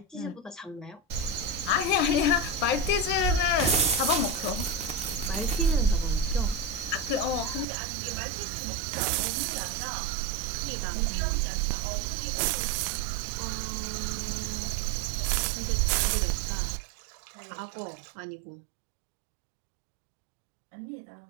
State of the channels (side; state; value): left; drops out; at 7.7 s